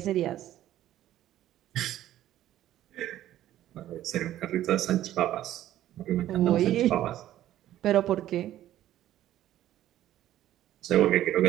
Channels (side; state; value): left; quieter; 13.0 dB